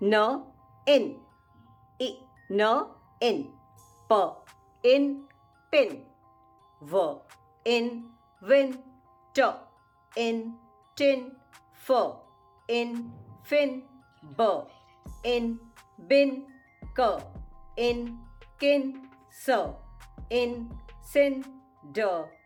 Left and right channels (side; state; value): both; identical; correlation 1.00